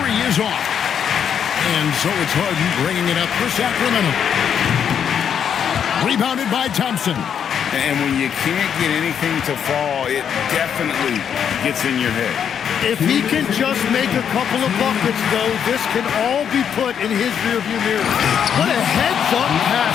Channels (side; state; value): right; quieter; 8.2 dB